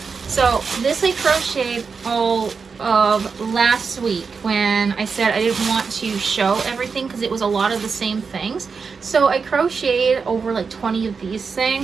So this I crocheted all of last week when I said I didn't want to show everything because it was a lot of the same things. So I crocheted over like 20 of these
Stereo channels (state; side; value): quieter; left; 5.3 dB